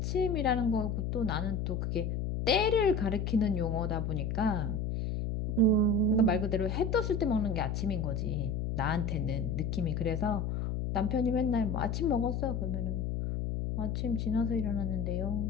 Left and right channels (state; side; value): noise; left; hum, 1 dB below the sound